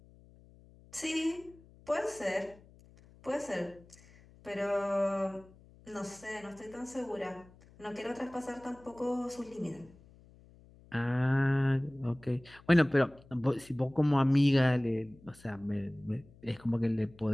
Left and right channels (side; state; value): left; noise; hum, 25 dB below the sound